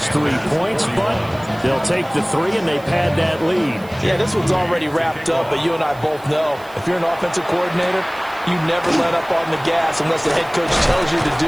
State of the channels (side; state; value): right; noise; hiss, 25 dB below the sound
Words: 3 points, but they'll take the 3 and they pad that lead. Yeah, this one's already wrapped up, but you and I both know if you're an offensive coordinator, you never let up on the gas unless the head coach tells you to